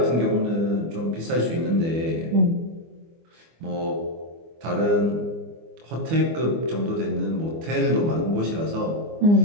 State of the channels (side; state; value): left; late; 24 ms